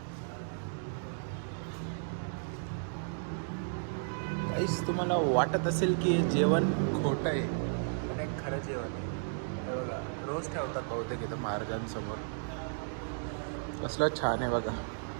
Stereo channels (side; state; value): left; silent; digital silence